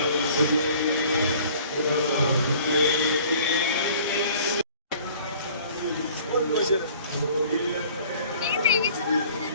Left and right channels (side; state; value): both; inverted; correlation -0.51